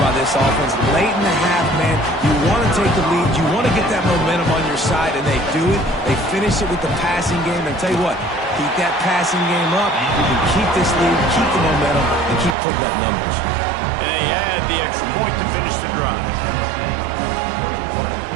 this offense. Late in the half, man, you want to take the lead. You want to get that momentum on your side, and they do it. They finish it with the passing game. And tell you what, keep that passing game up. You can keep this lead, keep the momentum, and keep putting up numbers. And they had the extra point to finish the drive.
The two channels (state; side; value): drops out; left; at 12.6 s